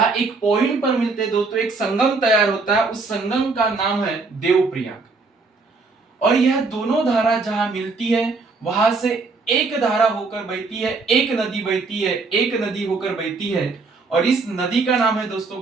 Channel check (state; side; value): quieter; left; 4.1 dB